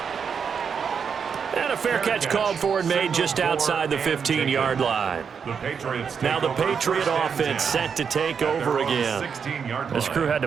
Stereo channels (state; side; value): quieter; left; 6.5 dB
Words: And a fair catch called for and made just outside the 15-yard line. Now the Patriot offense set to take over again. This crew had